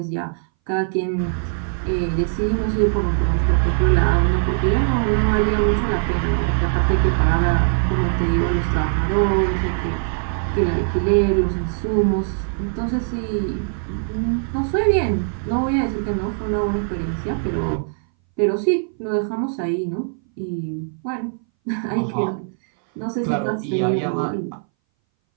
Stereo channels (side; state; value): left; silent; 61 dB below the other